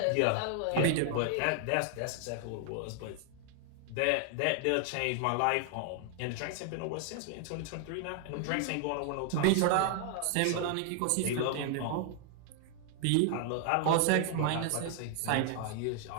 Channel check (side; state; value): both; different; correlation 0.00